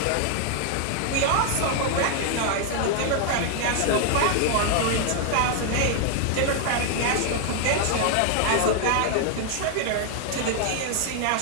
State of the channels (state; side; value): different; both; correlation 0.00